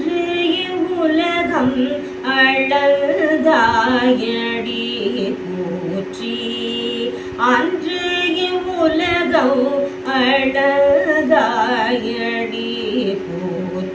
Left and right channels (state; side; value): identical; both; correlation 1.00